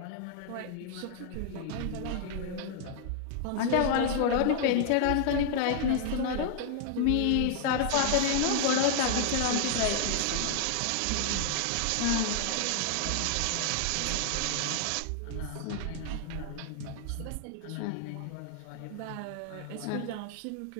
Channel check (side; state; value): both; different; correlation 0.00